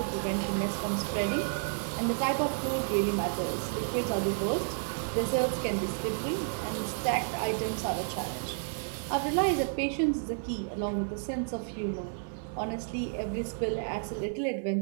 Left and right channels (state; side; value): silent; left; 57 dB below the other